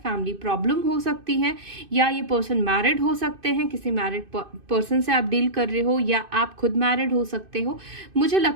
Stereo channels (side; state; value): left; late; 2.5 ms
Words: प्रॉब्लम हो सकती है, या ये पर्सन मैरिड हो सकते हैं, किसी मैरिड पर्सन से आप डील कर रहे हो, या आप खुद मैरिड हो सकते हो। मुझे